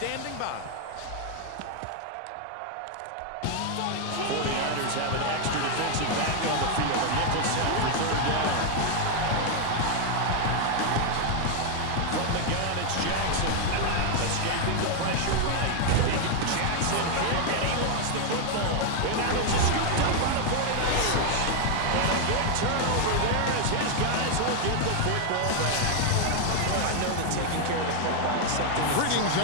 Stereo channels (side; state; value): both; different; correlation 0.00